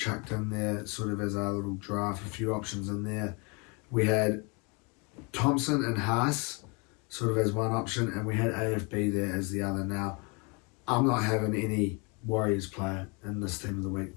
in there, sort of as our little draft, a few options in there. We had Thompson and Haas sort of as one option, and we had AFB there as the other. Now, I'm not having any Warriors player in this team of the week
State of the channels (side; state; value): right; quieter; 30.9 dB